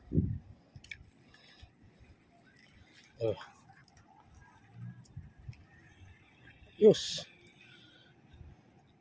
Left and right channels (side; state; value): both; identical; correlation 1.00